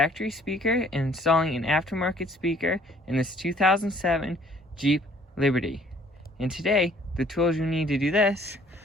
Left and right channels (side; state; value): both; normal; correlation 0.58